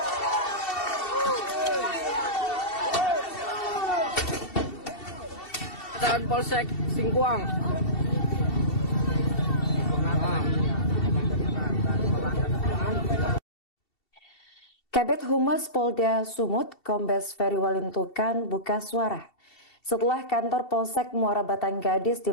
Dan Polsek Singkuang. Kabid Humas Polda Sumut, Kombes Ferry Walintukan buka suara setelah kantor Polsek Muara Batang Gadis di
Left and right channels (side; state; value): right; late; 2.7 ms